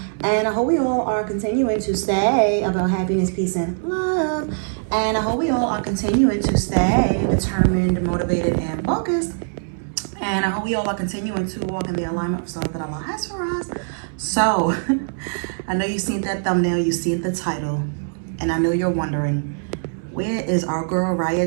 and I hope we all are continuing to stay about happiness, peace, and love. And I hope we all are continuing to stay determined, motivated, and focused. And I hope we all are continuing to walk in the alignment of stuff that Allah has for us. So, I know you've seen that thumbnail, you've seen the title, and I know you're wondering, where is our girl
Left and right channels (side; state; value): left; silent; 64 dB below the other